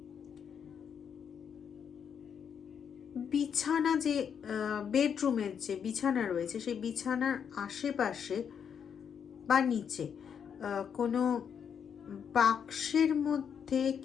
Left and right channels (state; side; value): quieter; right; 7.6 dB